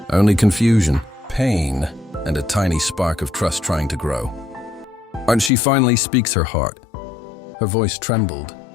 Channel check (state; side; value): drops out; right; at 5.5 s